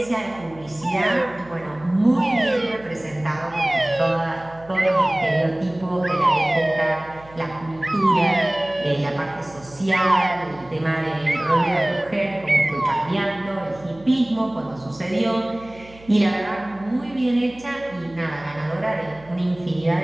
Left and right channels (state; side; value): noise; right; hum, 22 dB below the sound